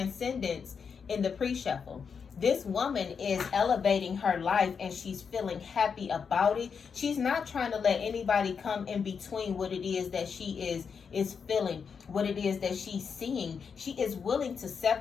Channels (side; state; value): right; quieter; 6.2 dB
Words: in the pre-shuffle. This woman is elevating her life and she's feeling happy about it. She's not trying to let anybody come in between what it is that she is feeling, what it is that she's seeing. She is willing to